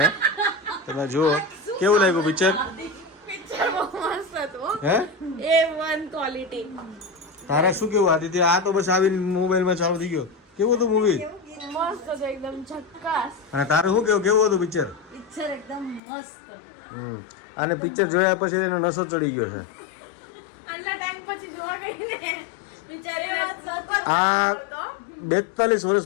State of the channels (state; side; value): drops out; right; at 16.0 s